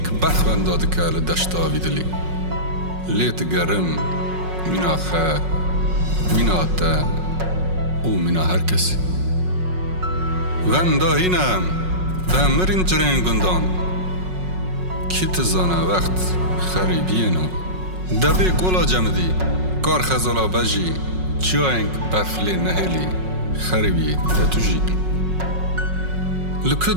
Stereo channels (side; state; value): left; late; 5.4 ms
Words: بەخوەن دادکە لە دەشتاوی دلی لێت گەرم مینا خە مینا تە و مینا هەر کەسی وەندا هینەم مرین جرین گندان کی تزانه وقت خریبینو دبی گولا جمدی کار خزالا بجی چیاینگ برفلی نهلی خریبی دتوجی لکو